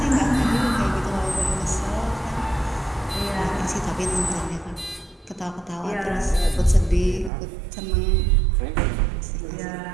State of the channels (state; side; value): drops out; left; at 7.3 s